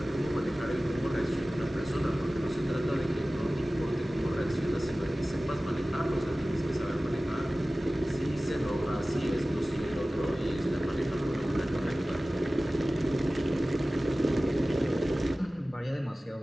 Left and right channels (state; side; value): normal; both; correlation 0.97